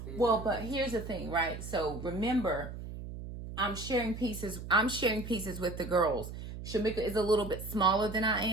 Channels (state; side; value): noise; right; hum, 9 dB below the sound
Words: Well, but here's the thing, right? So remember, I'm sharing pieces with the girls. Shakema is a little bit smaller than I